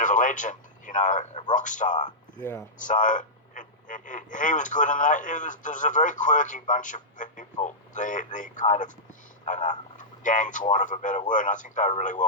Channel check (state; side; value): normal; both; correlation -0.11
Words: of a legend, a rock star. Yeah. So he was good in that. There was a very quirky bunch of people. The kind of, I don't know, gang, for want of a better word. And I think they were really